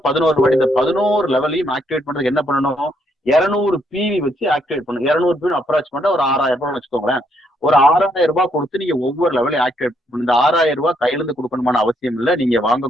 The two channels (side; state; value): both; normal; correlation 0.73